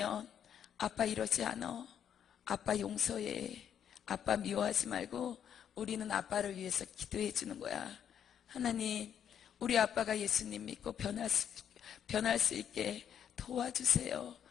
아빠 이러지 않아. 아빠 용서해. 아빠 미워하지 말고 우리는 아빠를 위해서 기도해 주는 거야. 하나님, 우리 아빠가 예수님 믿고 변할 수 있게 도와주세요.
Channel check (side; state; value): right; quieter; 8.9 dB